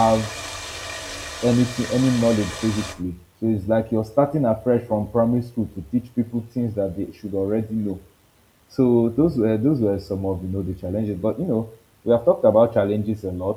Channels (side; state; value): both; identical; correlation 1.00